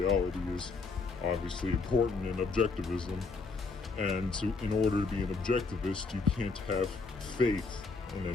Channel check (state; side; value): quieter; right; 4.2 dB